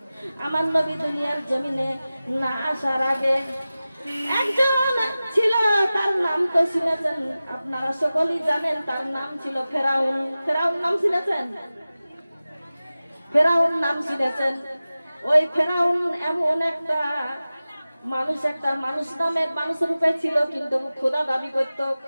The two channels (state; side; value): inverted; both; correlation -0.96